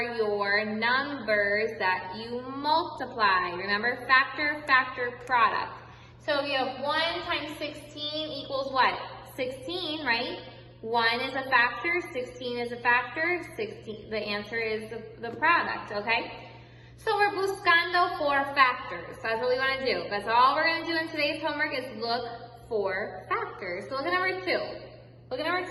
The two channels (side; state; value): both; identical; correlation 1.00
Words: your numbers that you multiply. Remember, factor, product. So if you have 1 times 16 equals what? 16, right? 1 is a factor, 16 is a factor, 16, the answer is the product, okay? So we're buscando for factors. That's what we want to do. That's all we're going to do in today's homework is look for factors. So look at number 2. Look at number